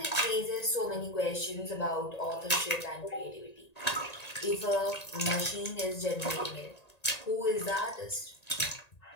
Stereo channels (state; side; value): late; right; 1.9 ms